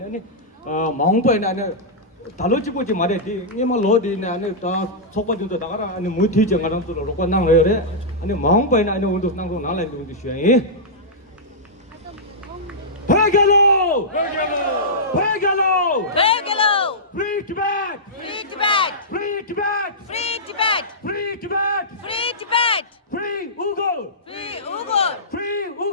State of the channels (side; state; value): both; normal; correlation -0.13